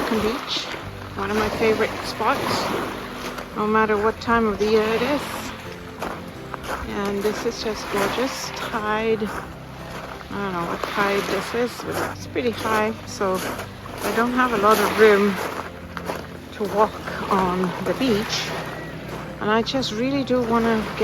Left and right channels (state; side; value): identical; both; correlation 1.00